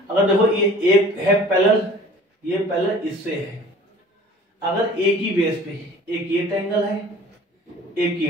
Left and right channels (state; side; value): normal; both; correlation 0.47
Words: अगर देखो ये एक है पैरेलल, ये पैरेलल इससे है, अगर एक ही बेस पे एक ये ट्रायंगल है, एक